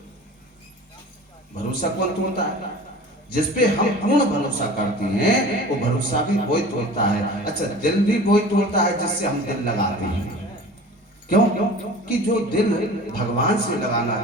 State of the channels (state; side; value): normal; both; correlation 0.40